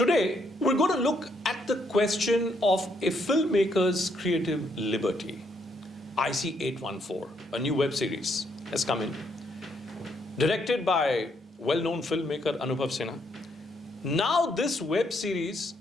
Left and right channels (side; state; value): both; normal; correlation 0.73